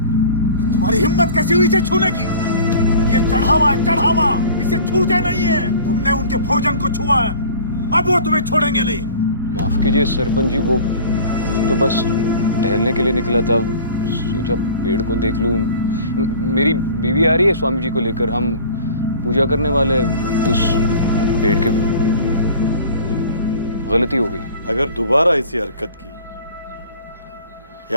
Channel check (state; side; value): inverted; both; correlation -0.43